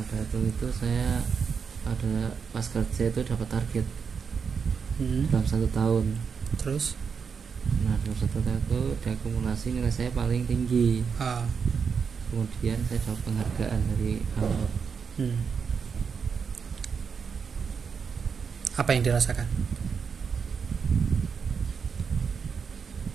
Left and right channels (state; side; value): quieter; left; 6.1 dB